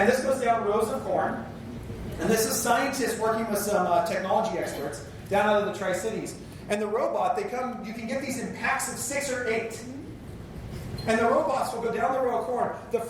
this goes down rows of corn. And this is scientists working with some technology experts down out of the Tri-Cities. And the robot, you can get these in packs of 6 or 8. And the robots will go down the row of corn. The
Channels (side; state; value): both; identical; correlation 1.00